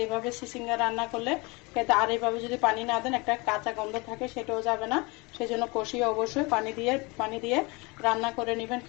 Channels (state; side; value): quieter; right; 26.6 dB